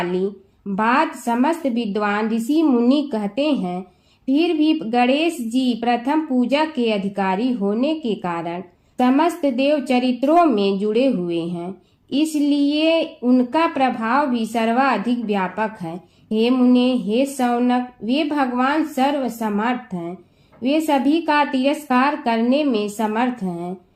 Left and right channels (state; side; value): identical; both; correlation 1.00